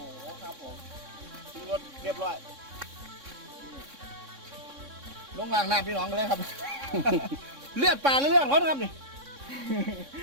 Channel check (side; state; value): left; late; 3.6 ms